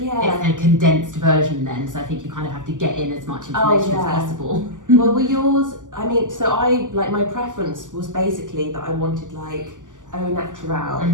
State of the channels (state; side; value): late; left; 0.87 ms